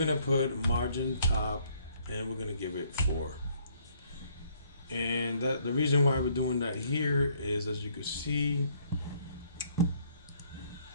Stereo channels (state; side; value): inverted; both; correlation -0.65